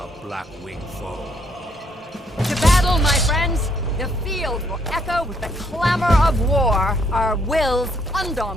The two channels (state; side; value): normal; both; correlation 0.70